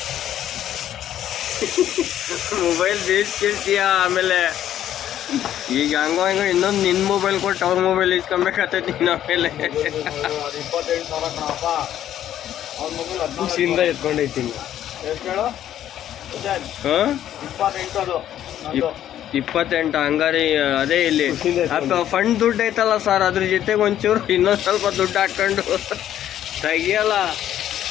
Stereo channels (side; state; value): right; quieter; 11.3 dB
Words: ಮೊಬೈಲ್ ಬೇಯಿಸ್ಕಿರ್ತೀಯ, ಆಮೇಲೆ ಈಗ ಹಂಗೋ ಇನ್ನೊಂದು ನಿನ್ನ ಮೊಬೈಲ್ ಕೊಟ್ಟು ಅವ್ರ ಮೊಬೈಲ್ ಇಸ್ಕೊಬೇಕಾಗ್ತೈತಿ ನೀನು. ಆಮೇಲೆ 28,000 ಕಣಪ್ಪ. ಅವ್ರ ಮೊಬೈಲ್ ಖುಷಿಯಿಂದ ಎತ್ಕೊಂಡೈತೀನಿ. ಎಷ್ಟು ಹೇಳು? ಹಾಂ, 28 ಅದು 28 ಹಂಗಾರಿ. ಅದೇ ಇಲ್ಲಿ ಫಂಡ್ ದುಡ್ಡು ಐತಲ್ಲ ಸರ್, ಅದ್ರ ಜೊತೆಗೆ ಒಂಚೂರು ಇನ್ನೊಂದು ಸ್ವಲ್ಪ ದುಡ್ಡು ಹಾಕೊಂಡು ತೆಗಿಯಲ್ಲ.